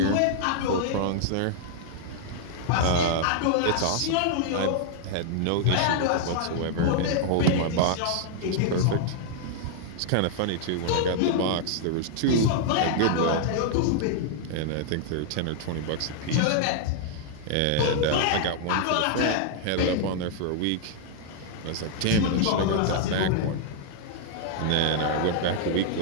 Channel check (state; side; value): different; both; correlation -0.01